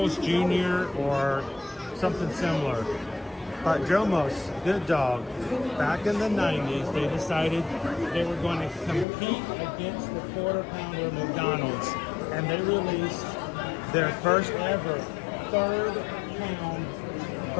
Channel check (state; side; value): drops out; right; at 9.1 s